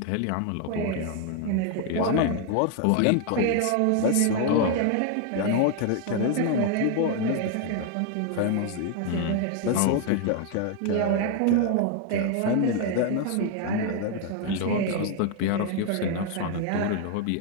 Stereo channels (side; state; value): both; different; correlation 0.01